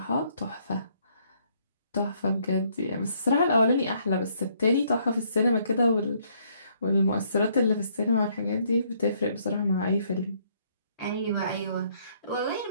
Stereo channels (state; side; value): inverted; both; correlation -0.68